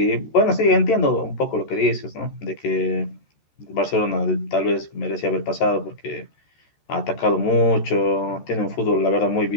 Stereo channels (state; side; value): late; right; 14 ms